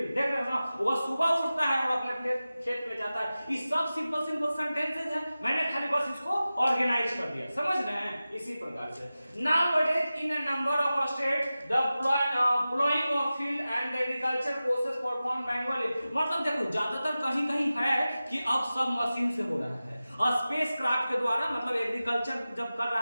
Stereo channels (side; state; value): both; inverted; correlation -0.95